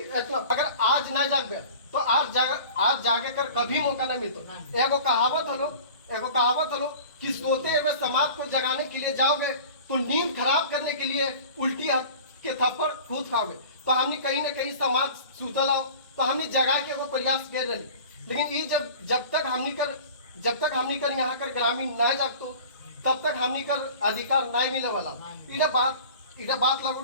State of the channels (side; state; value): both; inverted; correlation -0.41